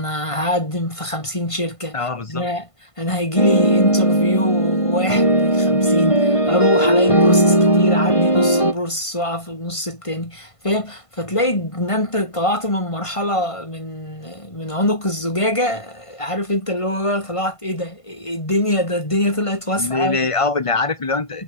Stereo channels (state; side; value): late; right; 1.5 ms